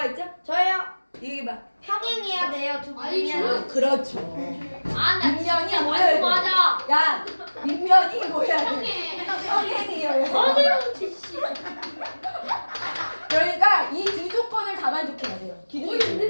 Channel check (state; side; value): inverted; both; correlation -1.00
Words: 있죠? 저요. 얘기해봐. 평행해야 돼요. 두 아니, 분이면. 그렇죠. 아나 밑면이 뭐여야 돼? 맞아. 야, 밑면이 뭐여야 돼? 형이. 평행이어야 돼. 그러니까 이 두 조건을 다 만족해야 돼요. 기둥이